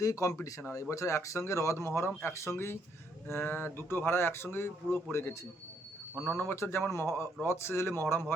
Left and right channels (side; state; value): both; normal; correlation 0.72